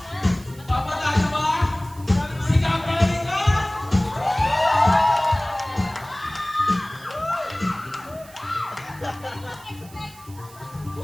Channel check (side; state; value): right; noise; hiss, 22 dB below the sound